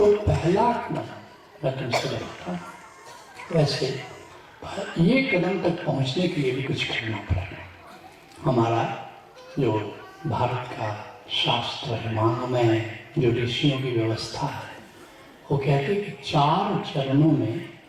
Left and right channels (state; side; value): identical; both; correlation 1.00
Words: पहला कदम मैं तुमसे बताता हूँ, वैसे ये कदम तक पहुँचने के लिए भी कुछ करना पड़ेगा। हमारा जो भारत का शास्त्र है, महामय जो ऋषियों की व्यवस्था है, वो कहते हैं कि 4 चरणों में